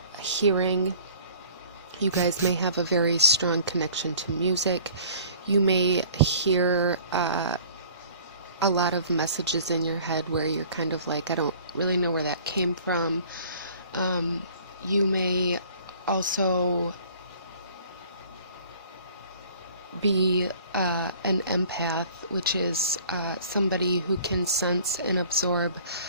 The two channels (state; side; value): inverted; both; correlation -0.50